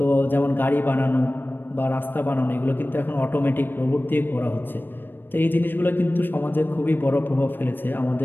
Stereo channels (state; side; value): late; right; 0.096 ms